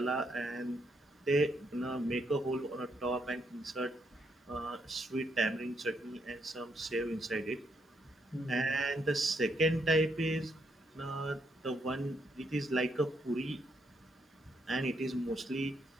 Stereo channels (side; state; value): both; normal; correlation 0.76